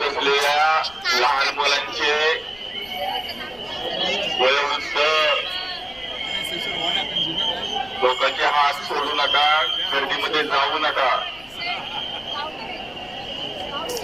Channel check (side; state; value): left; noise; rumble, 23 dB below the sound